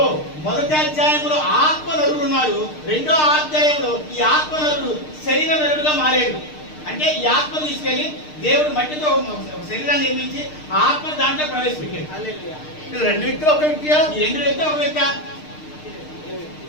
మొదటి అధ్యాయంలో ఆత్మ నరుడు ఉన్నాడు. రెండో అధ్యాయంలో ఈ ఆత్మ నరుడు శరీర నరుడుగా మారాడు. అంటే ఈ ఆత్మ తీసుకెళ్లి దేవుడు మట్టితో ఒక శరీరాన్ని నిర్మించి ఆ ఆత్మ దాంట్లో ప్రవేశపెట్టాడు. హల్లెలూయా. ఇది రెండు వ్యక్తులు ఒక వ్యక్తియా? ఈ రెండు వ్యక్తి ఒక వ్యక్తి.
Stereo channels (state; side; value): late; right; 6.6 ms